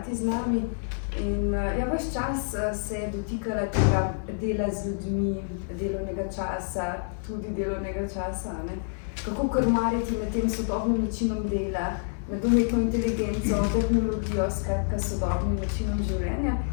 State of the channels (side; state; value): right; silent; 60 dB below the other